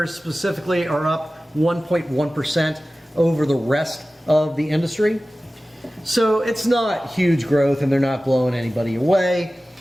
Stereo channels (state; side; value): normal; both; correlation 0.96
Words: specifically are up 1.1% over the rest of the industry. So it's not huge growth, and they're not blowing anybody away.